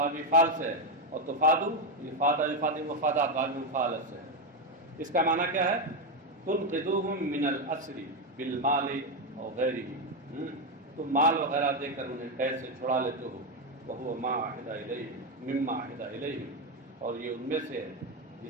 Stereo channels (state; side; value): normal; both; correlation 0.07